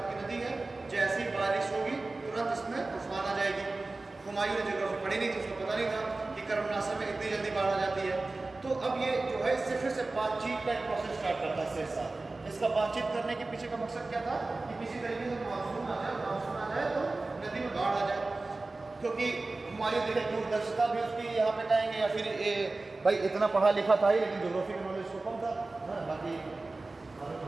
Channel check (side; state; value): left; quieter; 3.3 dB